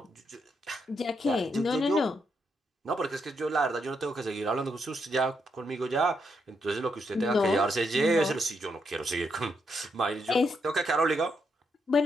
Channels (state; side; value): normal; both; correlation 0.79